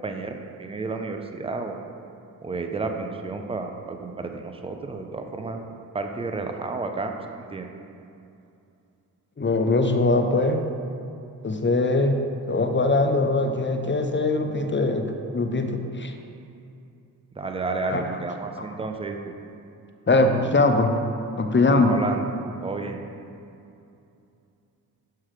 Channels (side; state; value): both; normal; correlation 0.28